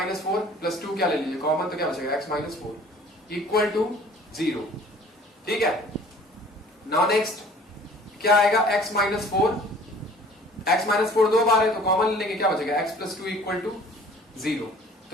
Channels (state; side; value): normal; both; correlation 0.50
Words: 4 प्लस 2 क्या ले लीजिए, कॉमन तो क्या बचेगा, x माइनस 4 इक्वल टू 0। ठीक है, नाउ नेक्स्ट क्या आएगा, x माइनस 4, x माइनस 4 दो बार है तो कॉमन ले लेंगे, क्या बचेगा, x प्लस 2 इक्वल टू 0।